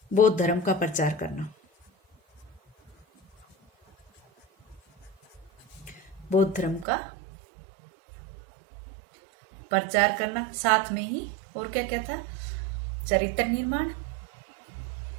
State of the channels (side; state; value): left; drops out; at 6.9 s